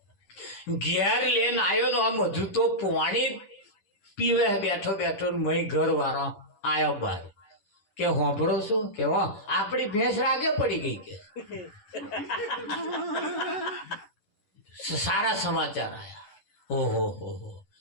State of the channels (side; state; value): right; late; 10 ms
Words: તો આમ હજુ તો પાણી પીવે બેઠો મય ઘર વાળો આવ્યો બહાર કે હોંભળો છો કે આપણી ભેંસ રાગે પડી ગઈ કે સારા સમાચાર આયા. ઓહો